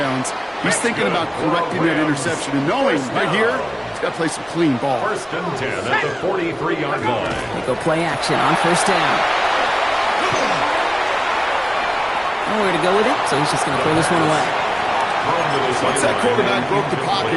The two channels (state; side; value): identical; both; correlation 1.00